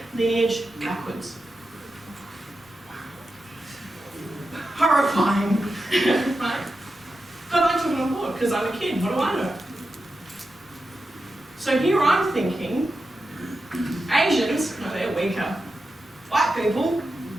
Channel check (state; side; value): normal; both; correlation 0.90